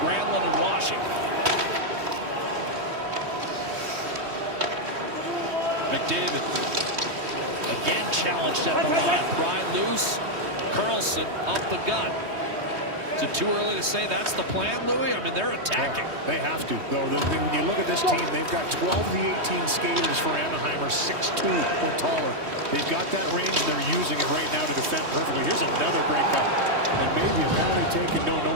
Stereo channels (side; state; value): left; late; 3.2 ms